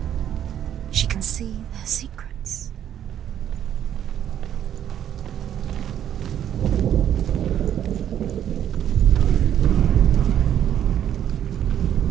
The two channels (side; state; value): left; quieter; 10.2 dB